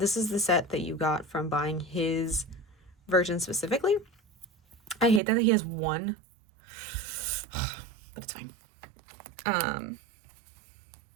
This is the set that you got from buying his version specifically. I hate that he has one, but it's fine.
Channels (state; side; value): drops out; left; at 5.2 s